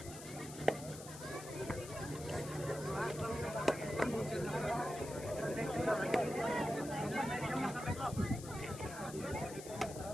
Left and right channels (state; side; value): noise; left; hiss, 13 dB below the sound